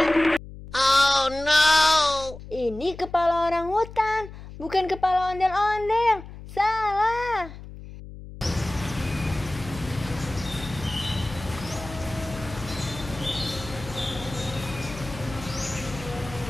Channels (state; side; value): noise; left; hum, 14 dB below the sound